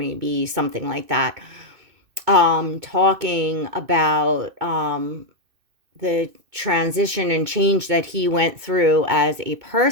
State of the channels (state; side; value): late; left; 2.6 ms